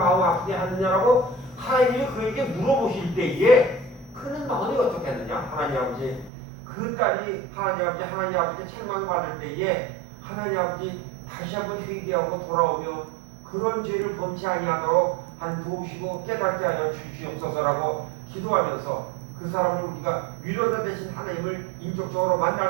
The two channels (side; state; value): left; drops out; at 6.3 s